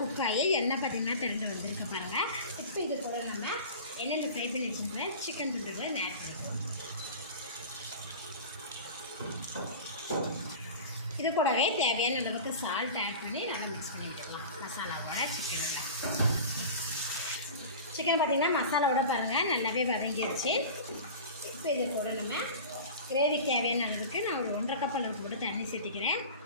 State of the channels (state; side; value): inverted; both; correlation -0.35